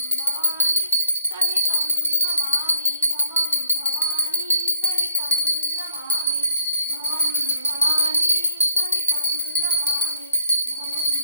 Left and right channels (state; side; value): inverted; both; correlation -0.69